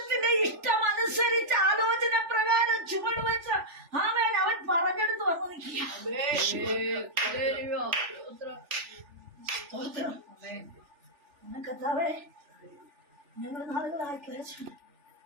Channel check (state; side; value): late; left; 3.4 ms